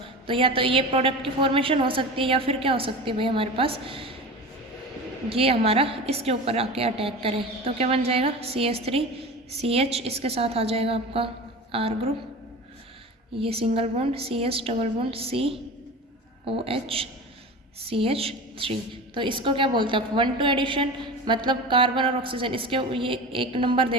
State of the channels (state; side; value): normal; both; correlation 0.31